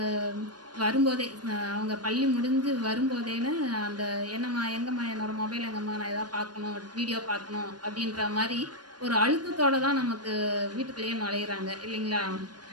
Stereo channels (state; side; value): late; left; 0.69 ms